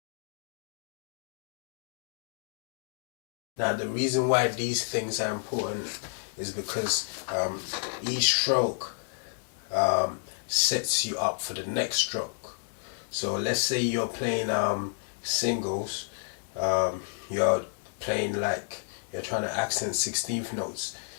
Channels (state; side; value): silent; right; digital silence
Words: Now the reason why these things are important is because each stroke sets you up for the next stroke. So let's say you're playing singles, you're playing like you're trying to accent 16th notes.